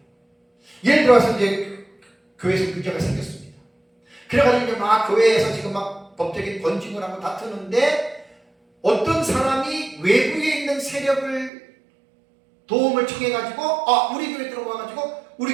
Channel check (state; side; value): drops out; left; at 11.5 s